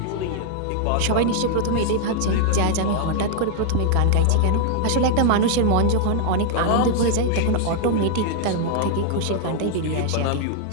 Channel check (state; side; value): different; both; correlation 0.00